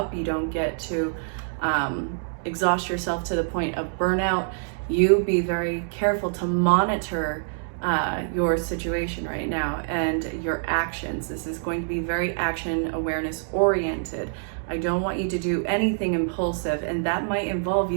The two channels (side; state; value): left; silent; digital silence